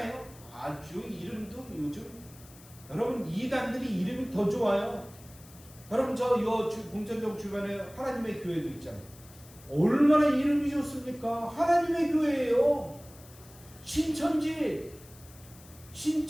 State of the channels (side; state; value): left; noise; hiss, 22 dB below the sound